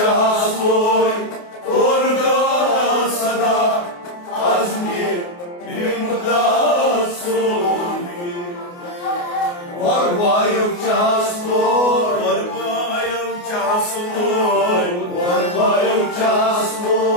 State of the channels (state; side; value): late; right; 28 ms